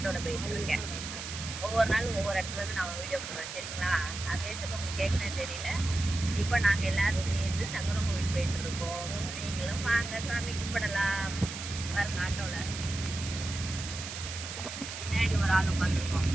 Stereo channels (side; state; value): right; noise; hiss, 8 dB below the sound